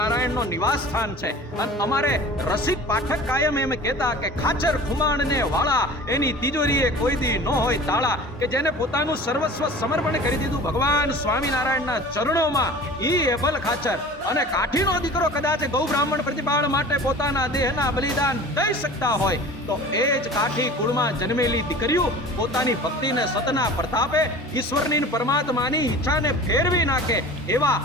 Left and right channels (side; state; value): both; normal; correlation 0.41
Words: નો નિવાસ સ્થાન છે. અને અમારે રસિક પાઠક કાયમ એમ કહેતા કે ખાચર ખુમાણ ને વાળા એની તિજોરીએ કોઈ દી ન હોય તાળા. કે જેને પોતાનું સર્વસ્વ સમર્પણ કરી દીધું ભગવાન સ્વામિનારાયણના ચરણોમાં, ઈ એબલ ખાચર. અને કાઠીનો દીકરો કદાચ ગૌ બ્રાહ્મણ પ્રતિપાળ માટે પોતાના દેહના બલિદાન દઈ શકતા હોય તો એ જ કાઠી કુળમાં જન્મેલી દીકરીઓ પોતાની ભક્તિને સતના પ્રતાપે ઈશ્વરની પરમાત્માની ઈચ્છાને ફેરવી નાખે. એવા